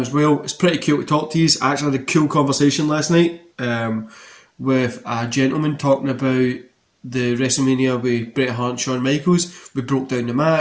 as well. It's pretty cool to talk to you. I actually had a cool conversation last night with a gentleman talking about the WrestleMania with Bret Hart and Shawn Michaels. We broke down the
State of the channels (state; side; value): identical; both; correlation 1.00